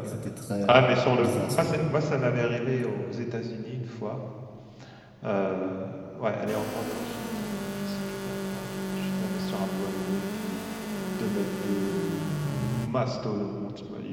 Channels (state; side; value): identical; both; correlation 1.00